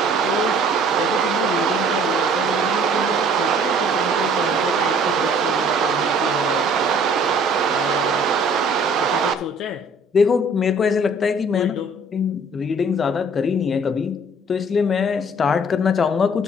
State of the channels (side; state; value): both; normal; correlation 0.55